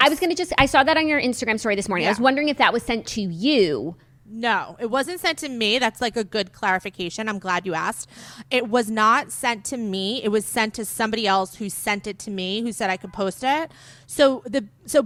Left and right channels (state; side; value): identical; both; correlation 1.00